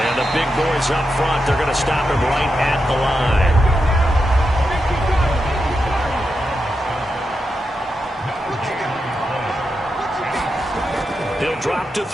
the big boys up front, they're going to stop him right at the line. He'll drop to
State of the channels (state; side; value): normal; both; correlation 0.87